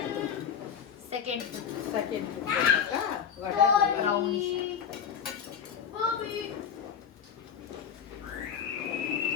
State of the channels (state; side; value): quieter; right; 7.7 dB